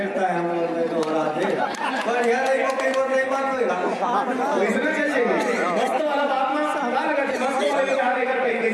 है हम लोग ने दोहरा दे पर यार एक कोई वो नहीं बात होगा इसमें चलिए मस्त वाला बात में सारा लगा मस्त वाले विचार लेकर कहीं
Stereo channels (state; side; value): identical; both; correlation 1.00